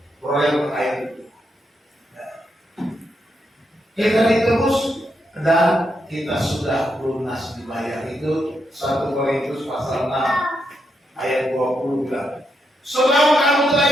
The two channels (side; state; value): both; normal; correlation 0.82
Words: oleh ayat itu. Kita ditebus dan kita sudah lunas dibayar. Itu 1 Korintus pasal 6 ayat 20 bilang, sebab kamu telah